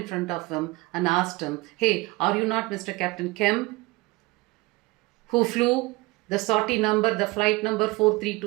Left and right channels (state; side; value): quieter; left; 23.0 dB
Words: front of him and asked him, "Hey, are you not Mr. Captain Kemp, who flew the sortie number, the flight number